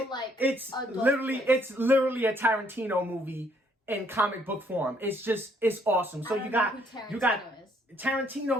it's literally twist. it's literally a Tarantino movie in comic book form. It's awesome. So you got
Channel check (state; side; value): normal; both; correlation 0.67